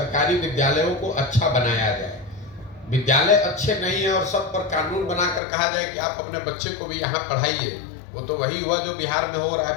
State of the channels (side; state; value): right; drops out; at 5.4 s